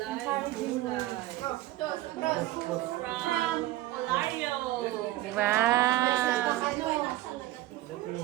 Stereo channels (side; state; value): left; quieter; 15.9 dB